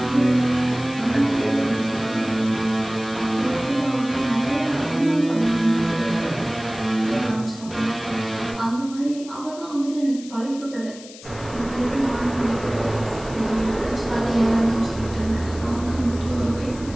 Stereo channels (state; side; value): noise; left; hiss, 18 dB below the sound